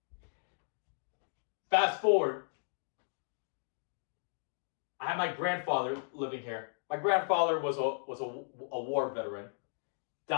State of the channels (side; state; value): right; silent; digital silence